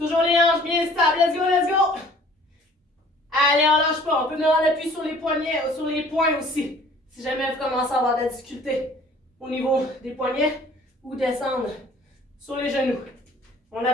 les hanches bien stables, let's go, let's go. Allez, on lâche pas, on peut venir en appui sur les poignets, sur les poings aussi. Si jamais vous commencez à avoir de la difficulté au niveau des poignets ou descendre sur les genoux. On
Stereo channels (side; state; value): both; normal; correlation 0.52